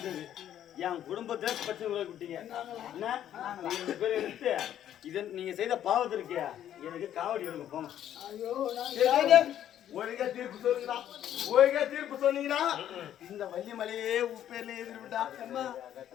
என் குடும்பத்துல பிரச்சனை விட்டீங்க என்ன நீங்க 2 பேரும் எடுத்து இதை நீங்க செய்த பாவத்திற்கு எனக்கு காவடி எடுங்க போங்க ஐயோ, நான் ஒழுங்கா தீர்ப்பு சொல்லுங்கடா ஒழுங்கா தீர்ப்பு சொன்னீங்கன்னா இந்த வள்ளிமலையே உப்பேர்ல எதிர்விட்டா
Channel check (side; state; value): right; quieter; 10.9 dB